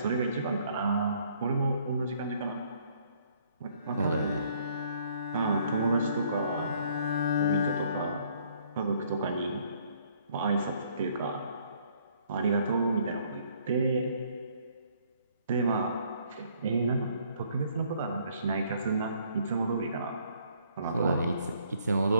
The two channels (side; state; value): both; inverted; correlation -0.64